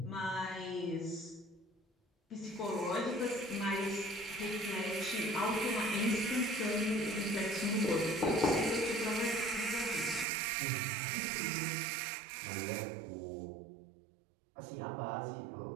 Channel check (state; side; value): drops out; left; at 10.2 s